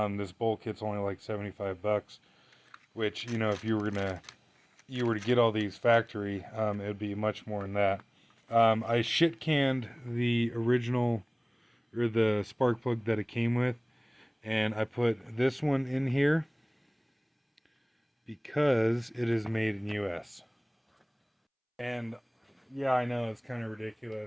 bolt kit's only like $75, which, you know, if you were to get all these factory, it would be much more than that. I shit canned the original, or the spark plug that it came with, and I put this one in here because it is made in US. And yeah, I know it's kind of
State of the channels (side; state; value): both; identical; correlation 1.00